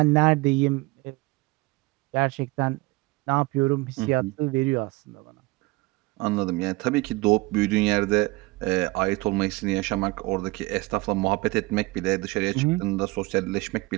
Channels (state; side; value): quieter; left; 23.1 dB